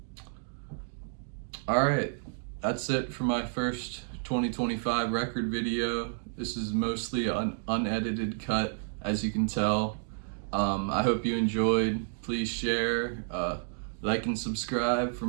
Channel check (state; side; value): silent; left; digital silence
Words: All right, that's it for my first 2025 record video. This is mostly an unedited cut, as you can tell. I hope you enjoyed. Please share, like and subscribe for